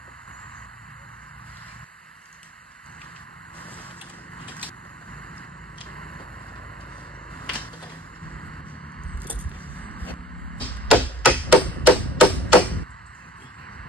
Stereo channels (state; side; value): normal; both; correlation 0.49